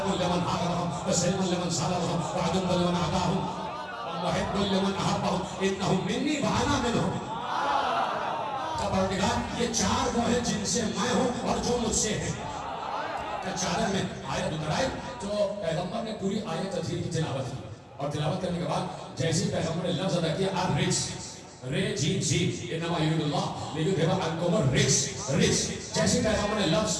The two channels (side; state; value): both; identical; correlation 1.00